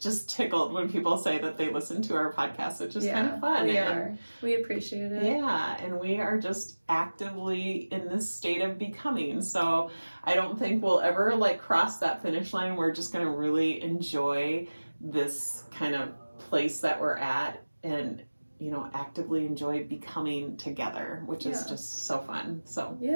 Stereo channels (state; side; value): inverted; both; correlation -1.00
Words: just tickled when people say that they listen to our podcast, which is kind of fun. We appreciate it. Yeah, and we are just actively in this state of becoming. So I don't think we'll ever like cross that finish line. We're just going to really enjoy this kind of place that we're at, and actively enjoy becoming together, which is just so fun. So